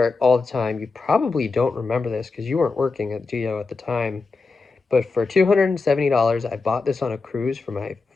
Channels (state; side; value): quieter; right; 4.1 dB